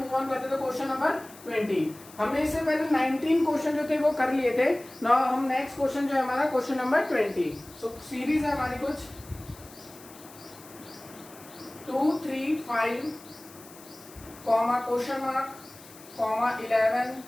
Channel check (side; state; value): left; noise; hiss, 20 dB below the sound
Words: ऑन करते हैं. तो क्वेश्चन नंबर 20 हमने इससे पहले 19 क्वेश्चन जो थे वो कर लिए थे. नाउ हम नेक्स्ट क्वेश्चन जो है हमारा क्वेश्चन नंबर 20. सो सीरीज है हमारी कुछ 2 3 5 comma question mark comma 11